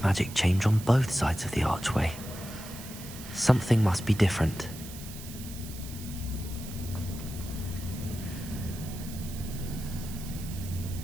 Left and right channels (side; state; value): right; noise; hiss, 14 dB below the sound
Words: magic change on both sides of the archway? Something must be different.